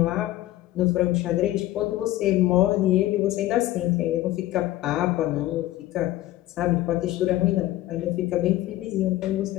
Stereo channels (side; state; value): right; quieter; 15.6 dB